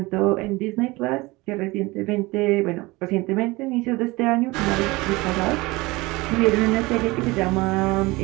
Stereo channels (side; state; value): left; quieter; 22.2 dB